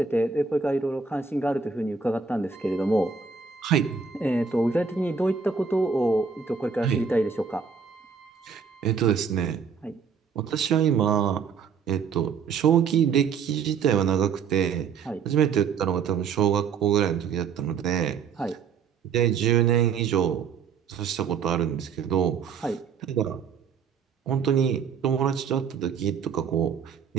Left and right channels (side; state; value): left; quieter; 6.1 dB